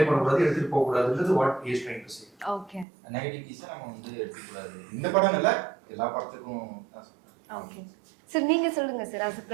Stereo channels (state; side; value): drops out; left; at 2.9 s